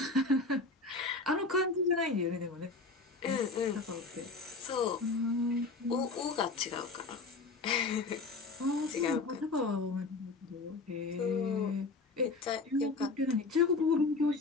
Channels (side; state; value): right; quieter; 3.8 dB